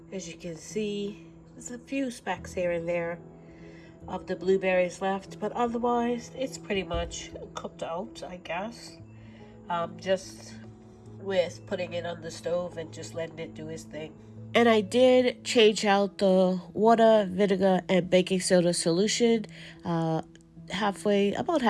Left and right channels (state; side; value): identical; both; correlation 1.00